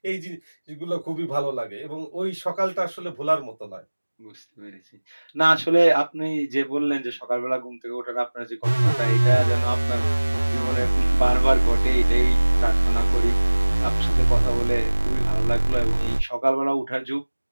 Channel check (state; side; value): inverted; both; correlation -1.00